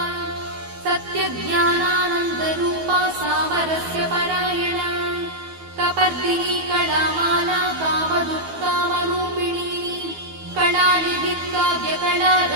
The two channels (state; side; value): late; left; 12 ms